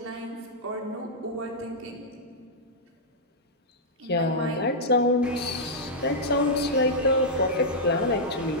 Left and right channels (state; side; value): normal; both; correlation -0.07